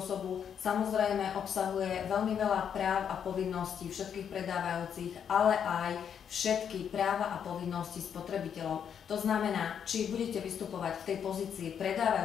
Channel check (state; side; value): quieter; right; 8.1 dB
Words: osobu. Samozrejme obsahuje veľmi veľa práv a povinností všetkých predávajúcich, ale aj všetky práva a povinnosti spotrebiteľov. To znamená, či budete vystupovať v tej pozícii